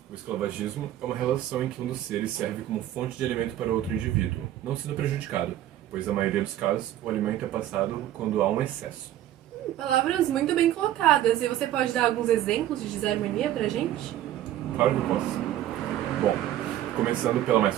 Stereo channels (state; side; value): quieter; left; 12.8 dB